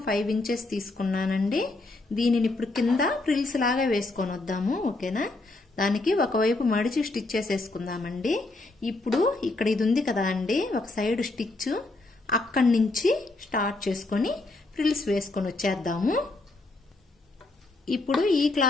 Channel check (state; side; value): quieter; right; 3.1 dB